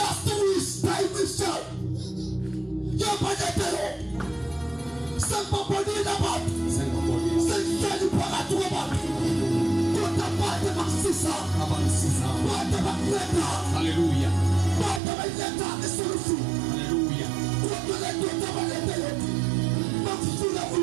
week time wisha yaba netelo sempaponi nabantu sengijali phakathi kwabantu kodwa bade bakusisa bade bakuletha Hallelujah. bade bayiletha esolution Hallelujah. kodwa le ndoda balethe bakufuna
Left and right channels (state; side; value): drops out; left; at 15.0 s